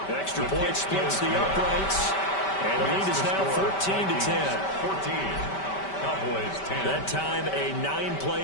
Extra point splits the uprights. And the lead is now 14-10. 14. Cowboys 10. That time a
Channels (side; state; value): right; late; 5.2 ms